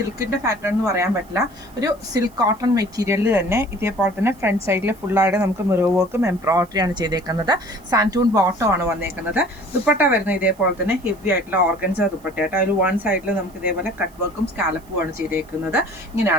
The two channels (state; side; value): noise; right; hiss, 28 dB below the sound